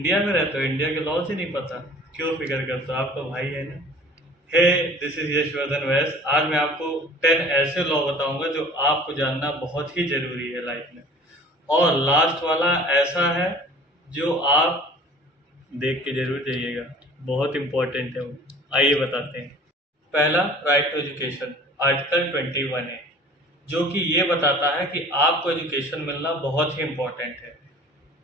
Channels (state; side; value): normal; both; correlation 0.47